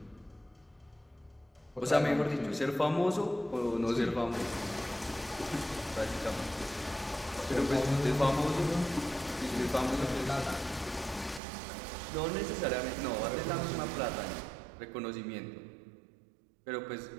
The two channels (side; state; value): left; drops out; at 11.4 s